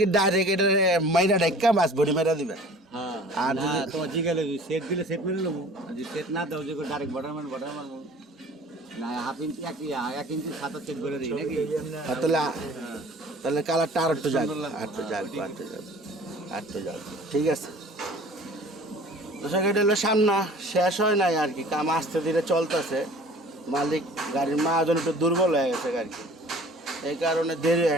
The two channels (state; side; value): normal; both; correlation 0.47